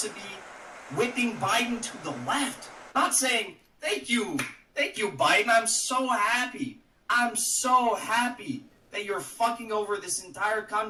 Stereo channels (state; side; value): identical; both; correlation 1.00